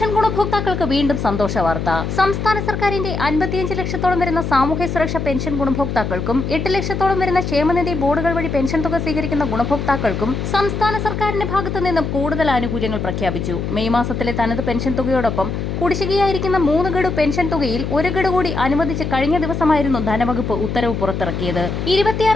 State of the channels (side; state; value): left; noise; hum, 3 dB below the sound